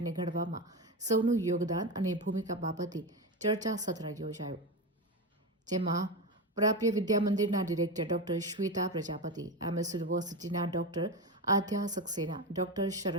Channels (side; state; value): both; normal; correlation 0.17